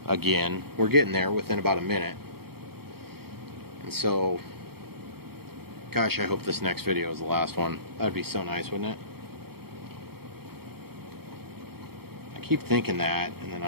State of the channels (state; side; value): late; left; 0.95 ms